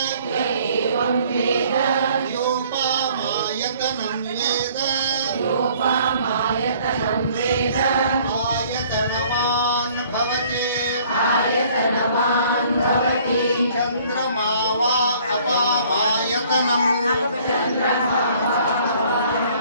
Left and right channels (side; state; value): both; inverted; correlation -0.57